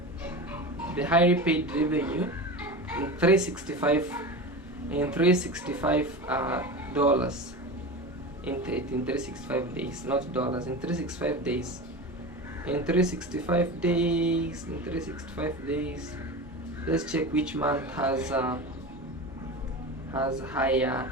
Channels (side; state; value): both; normal; correlation 0.28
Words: the highly paid revenue in 365 dollars in 365 days, not dollars, in 365 days. In 365 days, let's check which month has higher